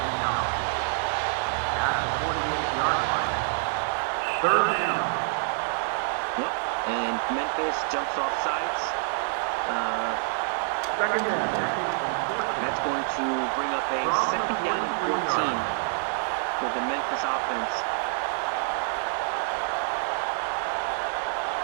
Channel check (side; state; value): left; silent; digital silence